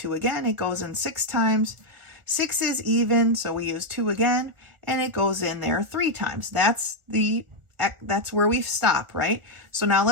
again. It goes in 6 times. 6 is even, so we use 2 again, and it goes in there 3 times. That's where we stop, right? So now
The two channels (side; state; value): left; late; 1.4 ms